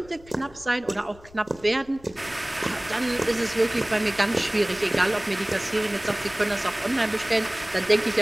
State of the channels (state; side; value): noise; left; rumble, 23 dB below the sound